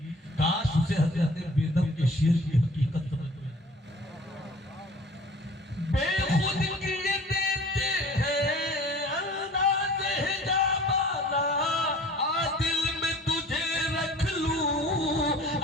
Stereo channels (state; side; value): normal; both; correlation 0.47